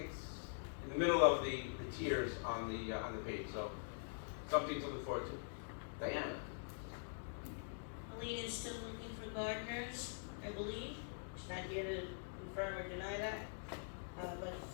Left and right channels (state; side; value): silent; right; digital silence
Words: in the middle of the tiers on the page. So something to look forward to. Diana. Alina is still looking for gardeners, I believe. She's not here to confirm or deny that, but